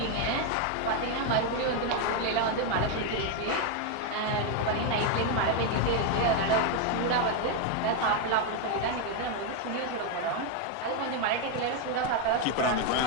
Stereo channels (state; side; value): different; both; correlation 0.01